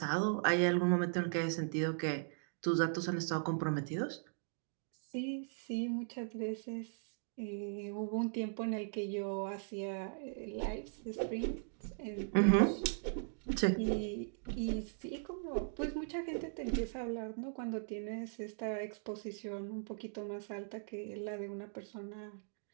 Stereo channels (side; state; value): left; silent; digital silence